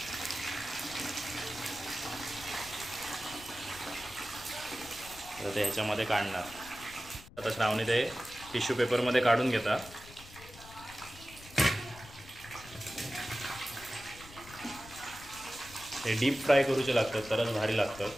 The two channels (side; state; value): left; noise; rumble, 18 dB below the sound